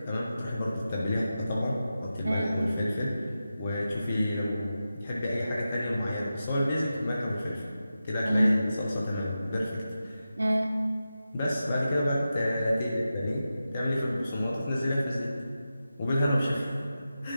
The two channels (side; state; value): both; inverted; correlation -0.92